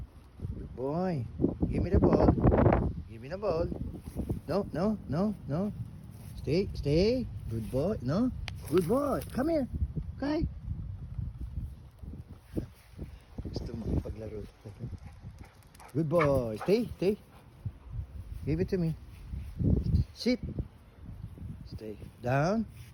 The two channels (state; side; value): identical; both; correlation 1.00